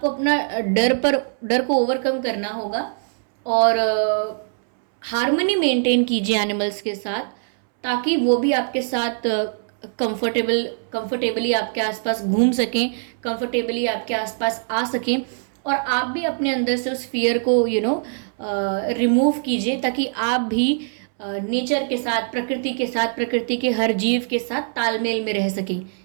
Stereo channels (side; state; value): left; silent; 64 dB below the other